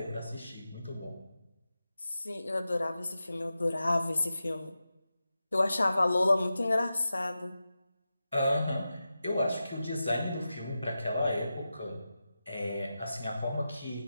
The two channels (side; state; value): both; inverted; correlation -0.92